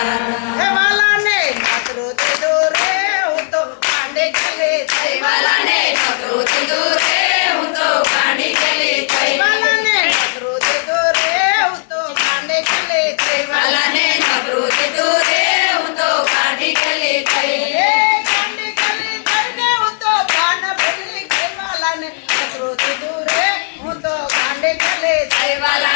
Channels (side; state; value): right; silent; 64 dB below the other